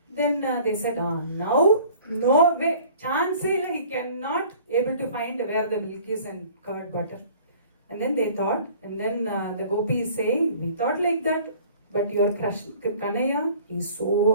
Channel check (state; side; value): inverted; both; correlation -0.50